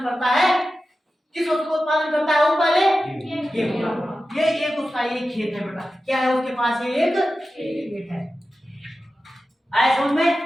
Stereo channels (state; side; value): normal; both; correlation 0.93